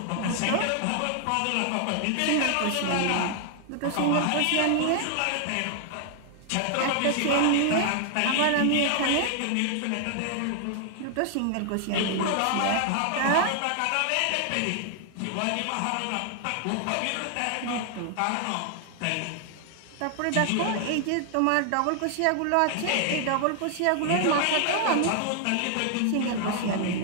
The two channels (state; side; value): different; both; correlation 0.00